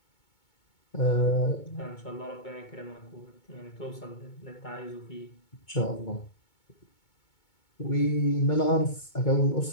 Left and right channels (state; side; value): late; right; 2.2 ms